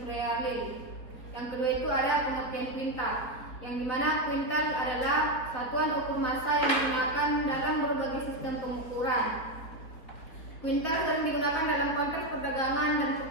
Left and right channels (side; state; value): right; late; 4.4 ms